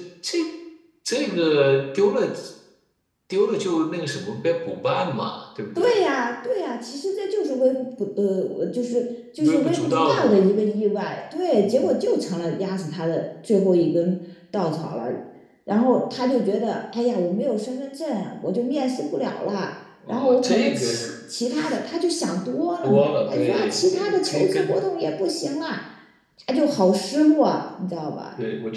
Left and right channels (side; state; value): both; identical; correlation 1.00